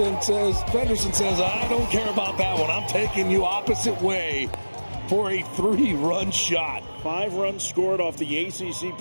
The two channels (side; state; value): both; inverted; correlation -1.00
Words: says, I don't care about that one. I'm taking you opposite way for a 3-run shot. 5 runs scored off the ACC